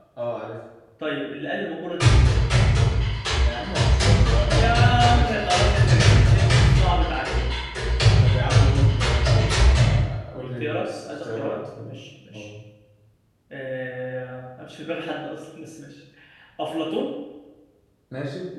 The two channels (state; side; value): identical; both; correlation 1.00